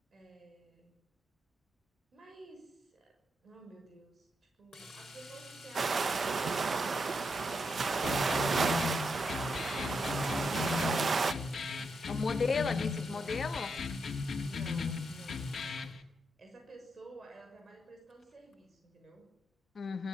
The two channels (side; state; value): both; normal; correlation 0.82